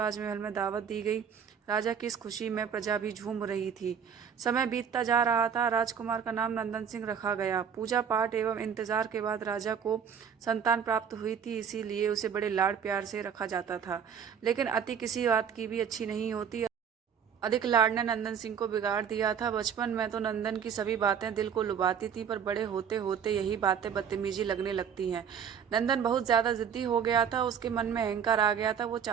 में दावत दी गई। राजा की इस खुशी में प्रजा भी झूम रही थी। समय बीतता जा रहा था। राजकुमार का नाम नंदन सिंह रखा गया। पूजा पाठ एवं इंतजार के बाद राजा को संतान प्राप्त हुई थी, इसीलिए उसे बड़े लाड प्यार से रखा जाता था। लेकिन अति किसी बात की भी अच्छी नहीं होती। अधिक लाड ने नंदन सिंह को बिगाड़ दिया था। बचपन में तो नंदन की सभी बातें दिल को लुभाती थी, पर बड़े होते होते यही बातें बदतमीजी लगने लगती हैं। नंदन बहुत ज्यादा जिद्दी हो गया था। उसके मन में अहंकार आ गया था। वो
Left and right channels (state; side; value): quieter; left; 7.6 dB